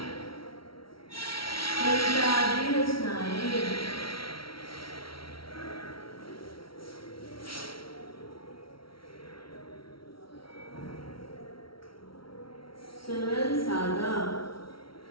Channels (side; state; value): right; late; 0.74 ms